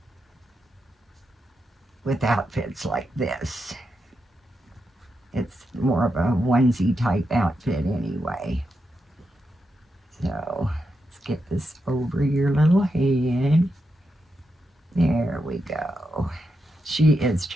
with outfits like this. It's more of a onesie type outfit anyway. So let's get this over your little head. There we go. She is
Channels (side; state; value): both; normal; correlation 0.86